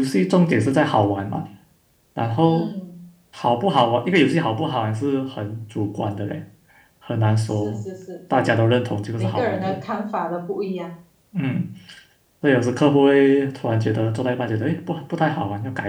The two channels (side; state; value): both; identical; correlation 1.00